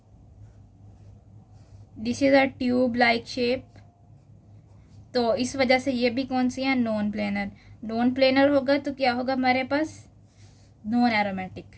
this is a tube like shape, तो इस वजह से ये भी कौन सी है, नॉन प्लेनर। नॉन प्लेनर होगा तो क्या होगा हमारे पास, नॉन एरोमेटिक।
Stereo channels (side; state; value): both; identical; correlation 1.00